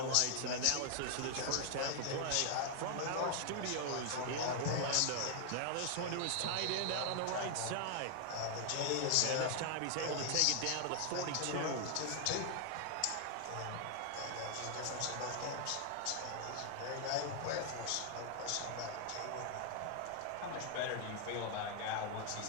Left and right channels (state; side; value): different; both; correlation 0.00